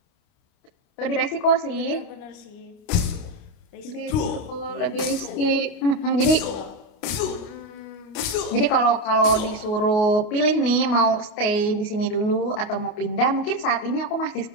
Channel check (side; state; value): right; late; 29 ms